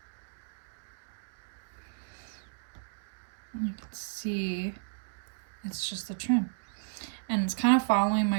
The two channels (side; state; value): left; silent; digital silence